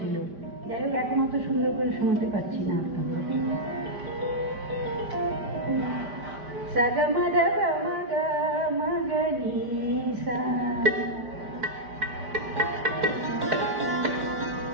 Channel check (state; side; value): late; left; 5.1 ms